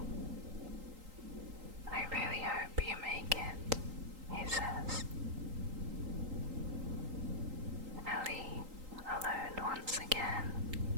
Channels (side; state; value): left; late; 3.8 ms